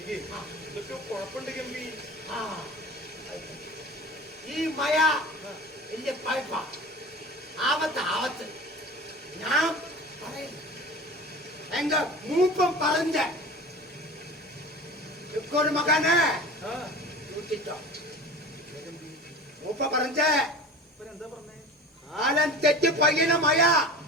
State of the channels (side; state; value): both; normal; correlation 0.37